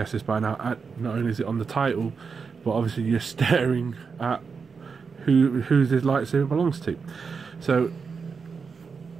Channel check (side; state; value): left; quieter; 5.4 dB